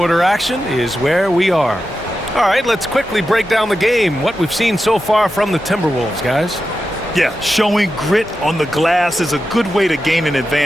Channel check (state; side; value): normal; both; correlation 0.91